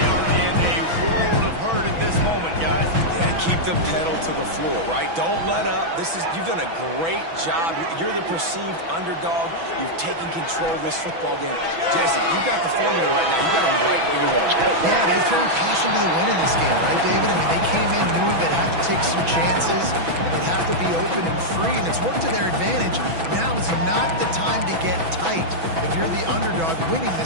are in a world of hurt at this moment, guys. Yeah, keep the pedal to the floor, right? Don't let up. You've done a great job. You're the perceived underdog. You've taken control of this football game. Jesse, you've got the formula right now. You got them right where you want. Yeah, they've thrown caution to the wind in this game, right, David? I mean, they came in knowing they'd have to take some chances, and they'd have to be open and free, and it's worked to their advantage. Now is not the time to get tight if you're the underdog winning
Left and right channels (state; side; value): late; left; 6.1 ms